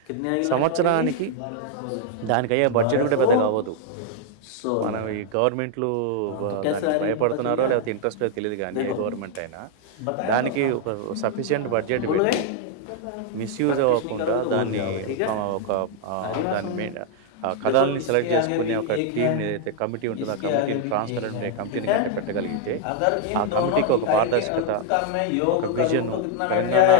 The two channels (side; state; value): both; different; correlation 0.00